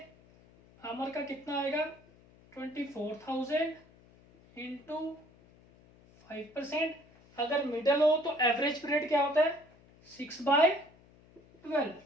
अमर का कितना आएगा 24,000 इंटू 5%। अगर मिडल हो तो एवरेज पीरियड क्या होता है 6/12।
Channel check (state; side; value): noise; left; hum, 27 dB below the sound